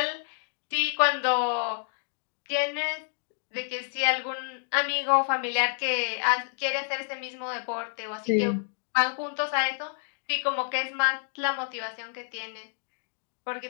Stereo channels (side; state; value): right; silent; digital silence